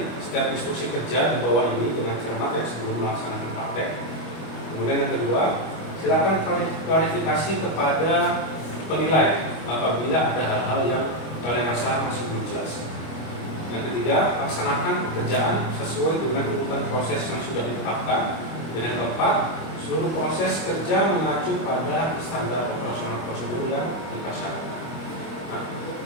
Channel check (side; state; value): right; late; 25 ms